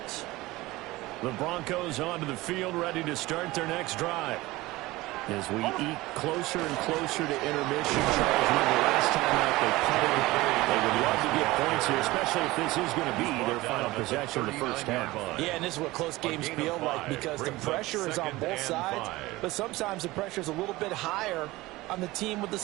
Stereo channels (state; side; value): quieter; left; 19.5 dB